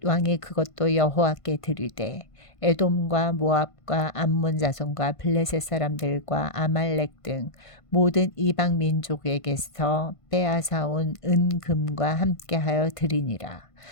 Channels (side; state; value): right; late; 1.5 ms